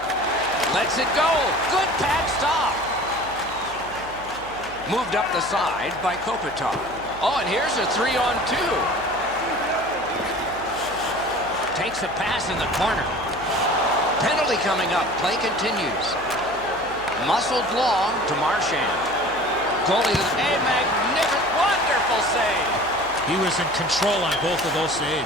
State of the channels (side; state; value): right; noise; hum, 18 dB below the sound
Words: Lets it go. Good pad stop. Moved up the side by Kopitar. Oh, and here's a 3-on-2. Takes a pass in the corner. Penalty coming up. Play continues. Muscled long to Marchand. Goalie, a magnificent, wonderful save. He was in control on both of those